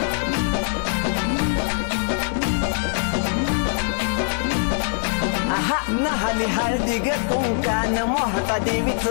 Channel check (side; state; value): right; silent; 64 dB below the other